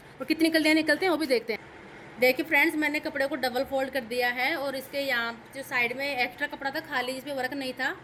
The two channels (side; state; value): both; identical; correlation 1.00